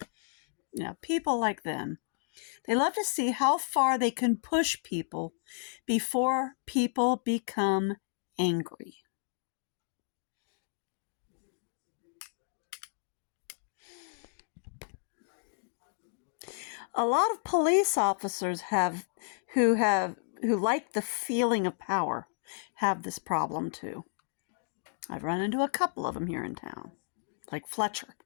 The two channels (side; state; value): right; silent; digital silence